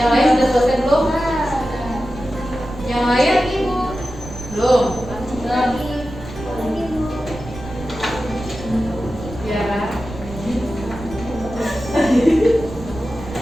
lain sudah selesai belum? Yang lain belum. Tiara.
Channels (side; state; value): right; noise; rumble, 13 dB below the sound